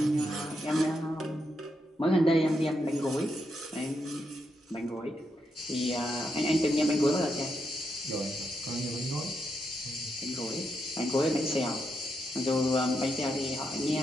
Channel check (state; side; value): normal; both; correlation 0.82